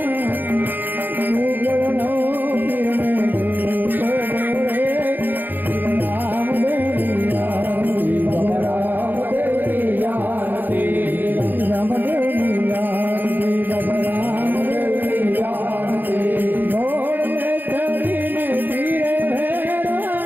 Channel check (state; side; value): late; left; 0.089 ms